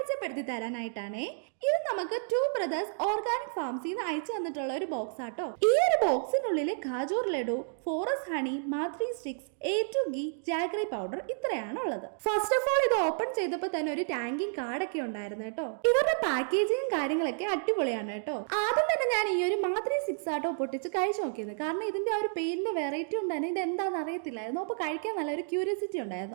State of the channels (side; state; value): left; silent; digital silence